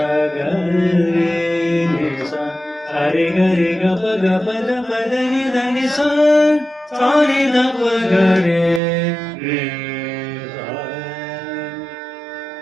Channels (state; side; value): drops out; left; at 8.8 s